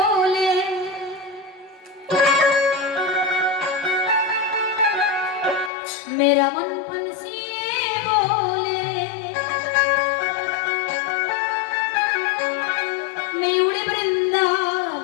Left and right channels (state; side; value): drops out; right; at 5.7 s